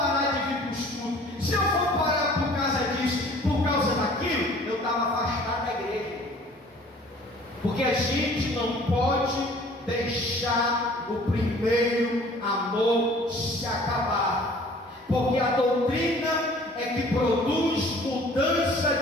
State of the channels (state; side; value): normal; both; correlation 0.51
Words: de vir para o estudo, se eu for parar por causa disso, por causa daquilo, eu estava afastado da igreja. Porque a gente não pode deixar o primeiro amor se acabar, porque a doutrina é que produz mudança